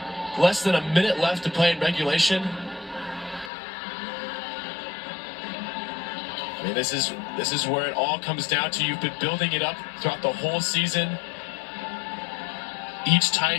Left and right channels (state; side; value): drops out; right; at 3.5 s